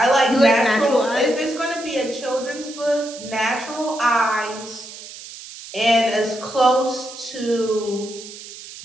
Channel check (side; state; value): right; noise; hiss, 14 dB below the sound